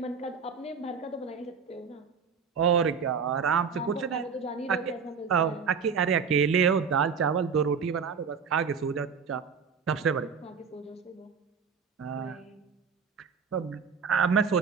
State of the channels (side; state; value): left; quieter; 6.1 dB